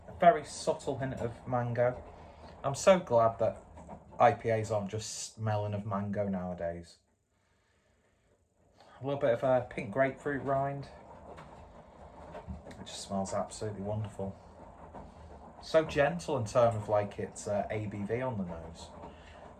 a very subtle hint of mango. I'm so glad that IPAs aren't just smelling of mango nowadays. A little bit of a pink grapefruit rind. It just smells absolutely wonderful. So gentle in terms of like its ABV on the nose.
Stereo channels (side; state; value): both; identical; correlation 1.00